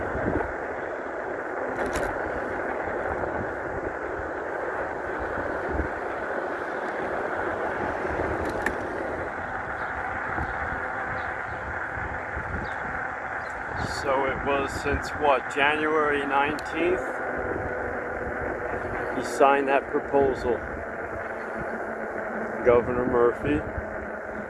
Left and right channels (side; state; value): both; identical; correlation 1.00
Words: So it was since what, January 19th? He signed that proposal, Governor Murphy.